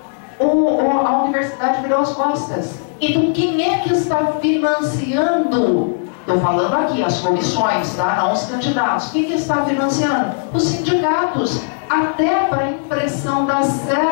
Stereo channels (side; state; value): right; silent; digital silence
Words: a universidade virou as costas. Então, quem é que está financiando Estou falando aqui, as comissões, tá? Não os candidatos. Quem que está financiando? Os sindicatos. Até para a impressão das